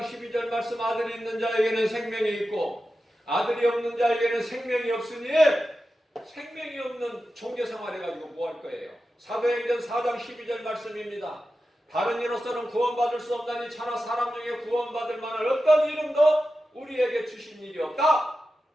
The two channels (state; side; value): normal; both; correlation 0.92